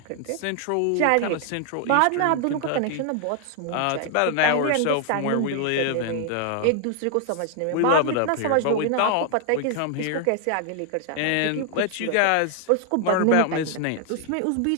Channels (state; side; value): different; both; correlation 0.00